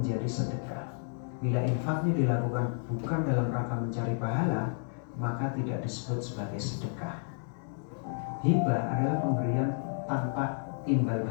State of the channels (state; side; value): silent; right; 57 dB below the other